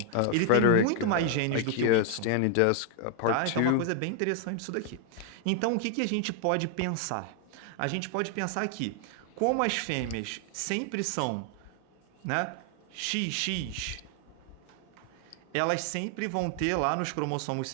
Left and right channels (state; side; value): different; both; correlation 0.00